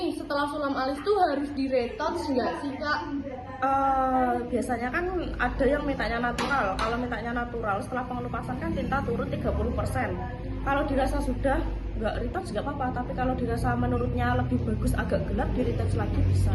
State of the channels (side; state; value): both; identical; correlation 1.00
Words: setelah sulam alis tuh harus di-retouch nggak sih Kak? Biasanya kan ada yang mintanya natural. Kalau mintanya natural setelah pengelupasan kan tinta turun 30%. Kalau dirasa sudah nggak retouch nggak apa-apa, tapi kalau dirasa menurutnya lebih bagus agak gelap, di retouch lagi